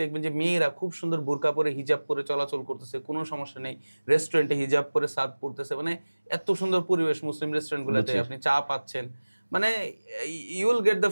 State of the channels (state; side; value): inverted; both; correlation -1.00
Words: দেখবেন যে মেয়েরা খুব সুন্দর বোরকা পরে, হিজাব পরে চলাচল করতেছে, কোনো সমস্যা নেই। রেস্টুরেন্টে হিজাব পরে সার্ভ করতেছে, মানে এত সুন্দর পরিবেশ মুসলিম রেস্টুরেন্টগুলোতে। বুঝছি। আপনি চা পাচ্ছেন। মানে you will get the